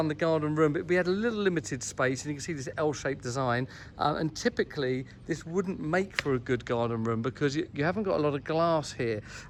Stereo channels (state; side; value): identical; both; correlation 1.00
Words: the garden room, but we had a little limited space, and you can see this L-shaped design, and typically this wouldn't make for a good garden room because you haven't got a lot of glass here,